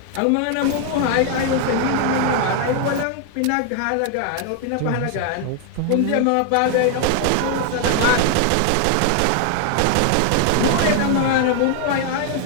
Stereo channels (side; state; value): both; different; correlation 0.00